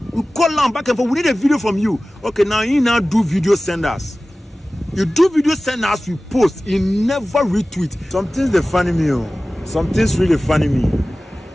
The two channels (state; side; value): normal; both; correlation 0.97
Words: We call them back and forth. We need a video from you. Okay, now you now do video, send us. You do video, send us. We post. You never retweet. Something's the funny me. Something's really funny me.